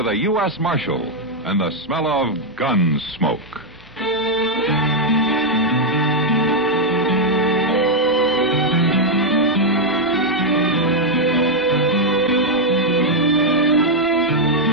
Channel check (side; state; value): both; normal; correlation -0.01